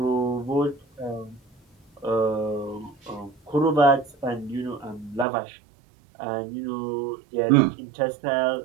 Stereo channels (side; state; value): left; drops out; at 5.2 s